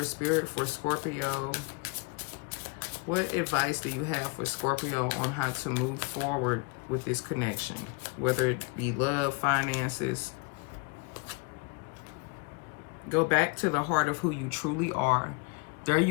Spirit for Scorpio. What advice do you have for Scorpio on how to move forward with this connection? Whether it be love, finances. Go back to the heart of who you truly are. There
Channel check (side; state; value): right; quieter; 32.2 dB